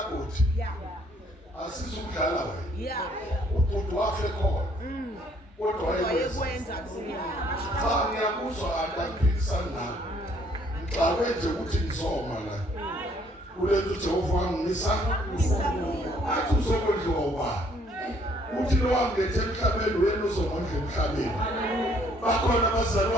asizukudlala wena ubhuti wafe khona kodwa wayekwenza cha ngiyakuzwa anti angiphikisani nawe ngixakwe nje ukuthi ngizoma la kulethu Jehova wangisa athi uzokondliwa ubani uthi lo wangethe emhlabeni wena uzomondla emhlabeni bakhona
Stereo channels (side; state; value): both; normal; correlation 0.64